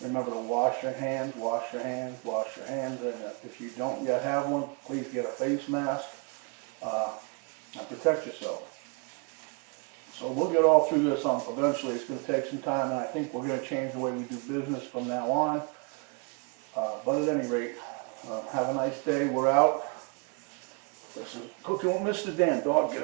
Remember to wash your hands, wash your hands, wash your hands, and if you don't yet have one, please get a face mask and protect yourself. So we'll get all through this eventually. It's going to take some time, and I think we're going to change the way we do business from now on. But at any rate, Have a nice day. We're out. This is Cooking with MrDan. Dog, get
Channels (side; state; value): left; quieter; 34.1 dB